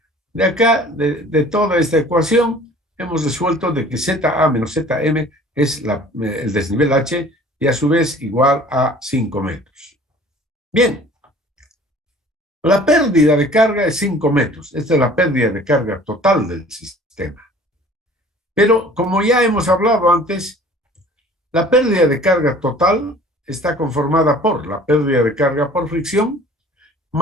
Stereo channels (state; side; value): normal; both; correlation 0.49